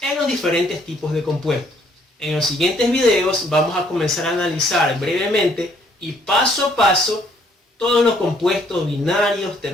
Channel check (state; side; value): normal; both; correlation 0.65